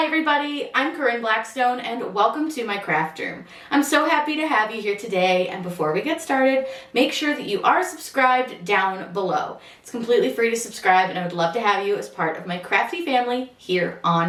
everybody, I'm Corinne Blackstone and welcome to my craft room. I'm so happy to have you here today, and before we get started, make sure that you are subscribed down below. It's completely free to subscribe and I would love to have you as part of my crafty family here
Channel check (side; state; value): both; identical; correlation 1.00